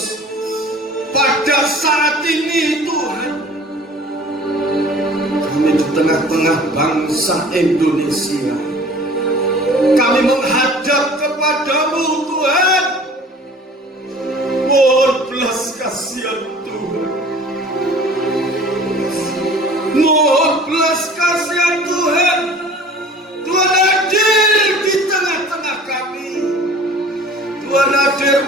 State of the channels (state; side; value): normal; both; correlation 0.46